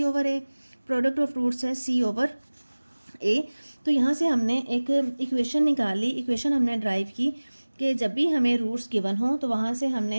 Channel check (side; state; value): both; inverted; correlation -1.00